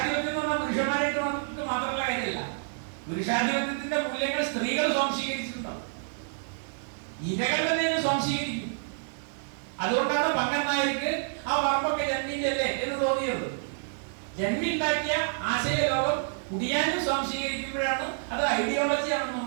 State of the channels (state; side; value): silent; left; digital silence